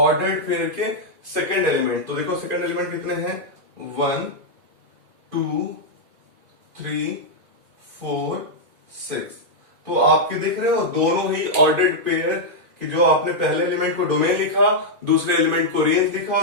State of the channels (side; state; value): left; late; 2.3 ms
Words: पेयर के सेकंड एलिमेंट। तो देखो सेकंड एलिमेंट कितने हैं, 1 2 3 4 6। तो आपके देख रहे हो दोनों ही ऑर्डर्ड पेयर कि जो आपने पहले एलिमेंट को डोमेन लिखा, दूसरे एलिमेंट को रेंज लिखा,